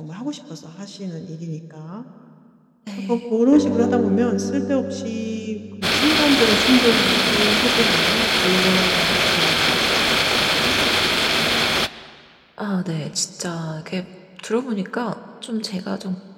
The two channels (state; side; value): identical; both; correlation 1.00